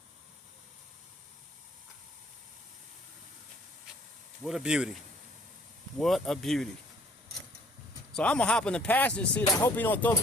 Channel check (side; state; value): both; normal; correlation 0.58